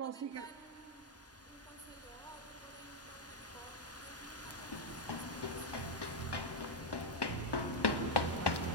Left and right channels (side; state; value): both; normal; correlation 0.00